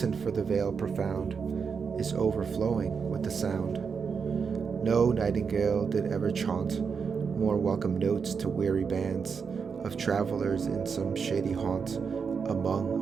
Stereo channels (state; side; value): quieter; left; 5.9 dB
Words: for the vale profound is overflowing with the sound. No nightingale did ever chaunt more welcome notes to weary bands of travelers in some shady haunt among